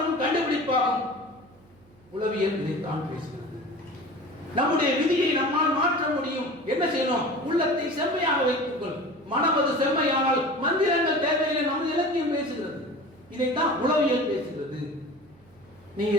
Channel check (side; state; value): right; noise; hum, 29 dB below the sound